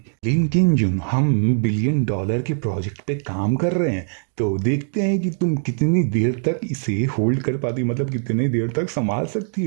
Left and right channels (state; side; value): silent; left; 65 dB below the other